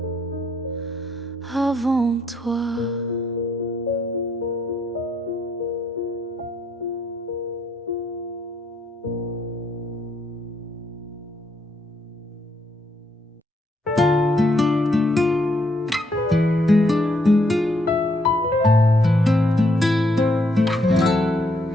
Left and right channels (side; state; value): both; normal; correlation 0.73